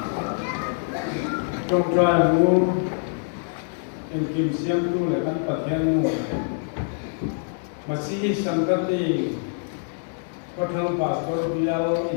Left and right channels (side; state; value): right; silent; digital silence